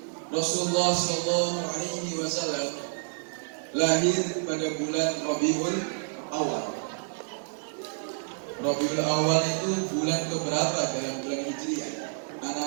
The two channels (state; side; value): silent; left; 56 dB below the other